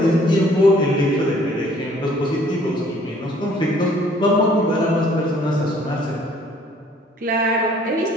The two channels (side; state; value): both; normal; correlation 0.59